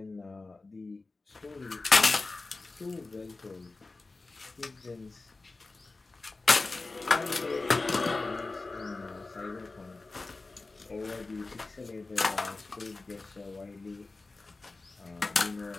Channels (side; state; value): right; quieter; 3.5 dB